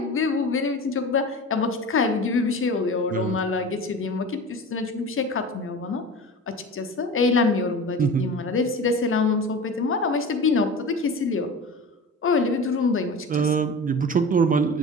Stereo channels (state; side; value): normal; both; correlation 0.34